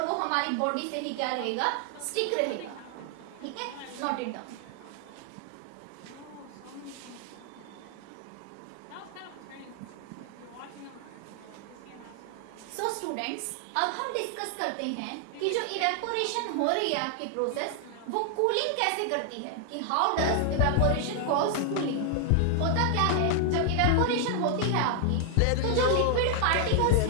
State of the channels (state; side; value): different; both; correlation 0.00